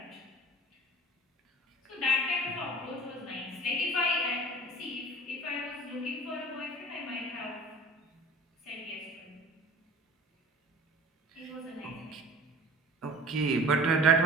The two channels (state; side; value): normal; both; correlation 0.42